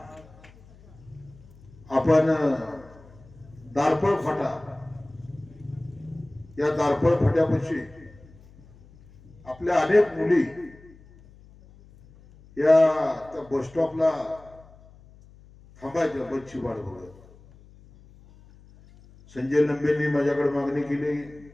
आपण दारपळ फाटा या दारपळ फाट्यापाशी आपल्या अनेक मुली या त्या बस स्टॉपला थांबायच्या बसची वाट बघत. संजय लंबेंनी माझ्याकडे मागणी केली,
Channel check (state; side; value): noise; left; hum, 24 dB below the sound